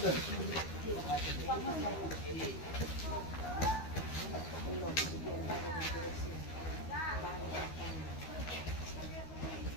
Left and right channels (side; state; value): right; late; 13 ms